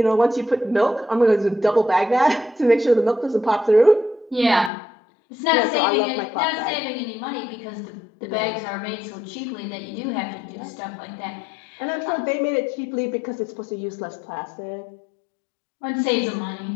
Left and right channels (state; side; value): drops out; right; at 4.7 s